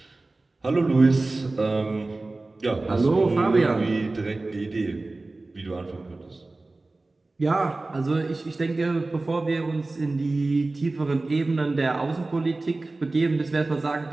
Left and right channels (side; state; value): left; quieter; 3.2 dB